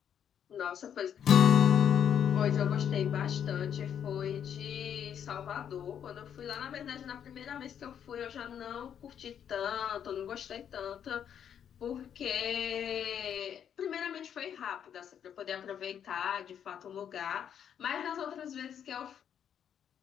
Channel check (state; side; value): quieter; right; 8.8 dB